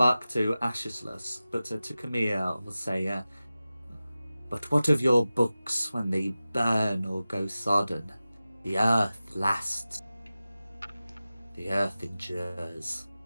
to Ashislus, but to Camille will say, but what of your books when they burn or go sodden? The earth lasts. The earth endures.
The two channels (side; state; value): both; inverted; correlation -0.95